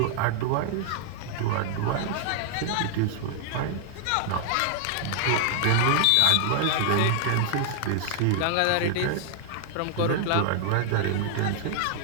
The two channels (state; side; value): different; both; correlation 0.00